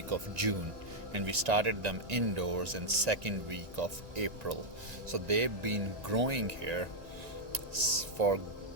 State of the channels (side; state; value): left; late; 1.9 ms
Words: of June, and we started them indoors in second week of April. So they've been growing here for